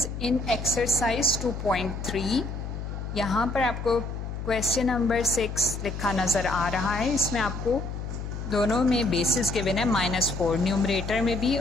in exercise 2.3 यहाँ पर आपको क्वेश्चन नंबर 6 लिखा नज़र आ रहा है। इसमें आपको दोनों में बेसिस गिवन है -4, न्यूमरेटर में भी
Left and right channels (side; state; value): left; noise; hum, 6 dB below the sound